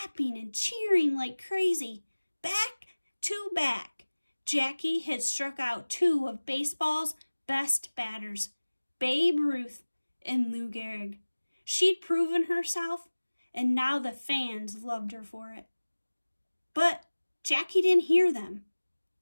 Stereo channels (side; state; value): both; inverted; correlation -1.00